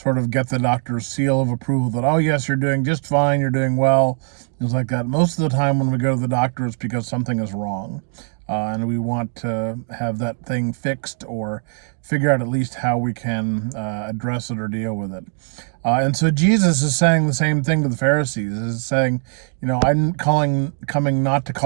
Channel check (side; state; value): left; silent; 55 dB below the other